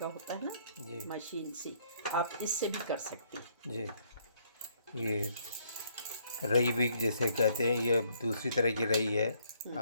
होता है ना जी मशीन से, आप इससे भी कर सकती हैं। जी। ये रई भी जैसे कहते हैं, ये दूसरी तरह की रई है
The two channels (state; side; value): inverted; both; correlation -0.67